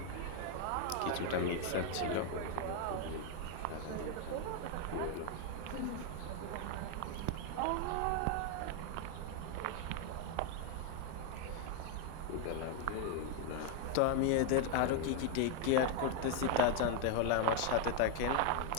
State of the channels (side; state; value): both; different; correlation 0.01